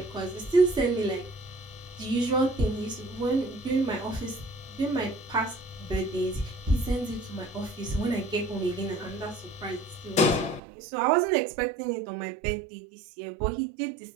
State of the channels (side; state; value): left; drops out; at 10.6 s